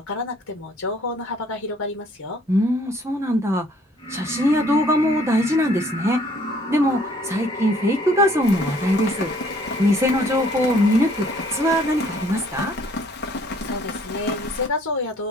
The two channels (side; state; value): both; normal; correlation 0.60